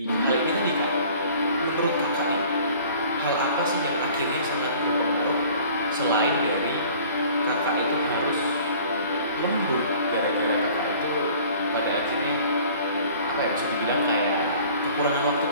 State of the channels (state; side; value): inverted; both; correlation -0.50